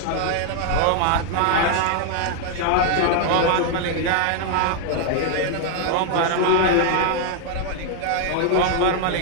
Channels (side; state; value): both; different; correlation 0.00